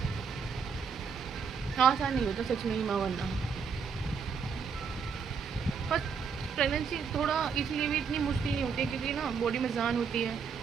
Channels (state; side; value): quieter; left; 6.1 dB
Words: आसान नहीं होता सच में ही माँ बनना। पर प्रेगनेंसी थोड़ा इसलिए भी इतनी मुश्किल नहीं होती है क्योंकि ना बॉडी में जान होती है,